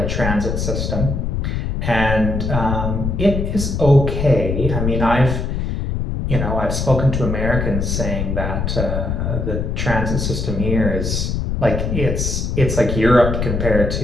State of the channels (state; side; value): noise; left; rumble, 1 dB below the sound